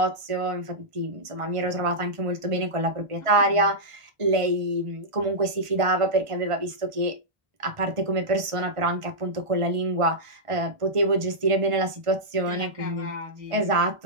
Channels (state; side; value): late; left; 1.4 ms